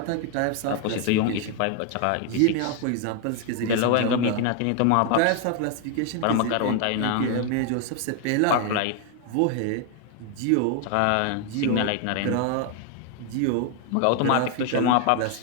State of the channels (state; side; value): different; both; correlation 0.01